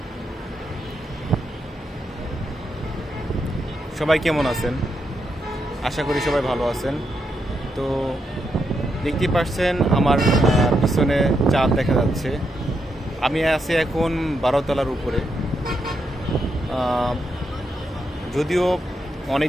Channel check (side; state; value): both; normal; correlation 0.82